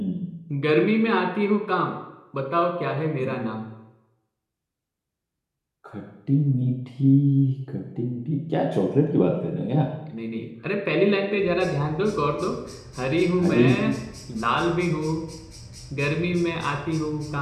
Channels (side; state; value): both; identical; correlation 1.00